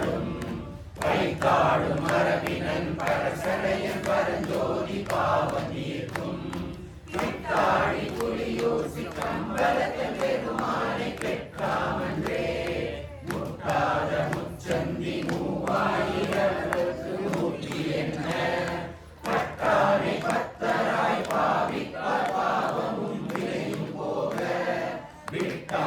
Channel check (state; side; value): identical; both; correlation 1.00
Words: வைத்தாடும் மரபினன் பரசடையன் பரஞ்சோதி பாவம் தீர்க்கும், விட்டாடி புலியூசி கம்பலத்தன் பெருமானை பெற்றாமன்றே, முட்டாத முச்சந்தி மூவாயிரத்துக்கு நூற்றி என்ன, பட்டானை பத்தராய் பாவிப்பார் பாவமும் விளையும் போக,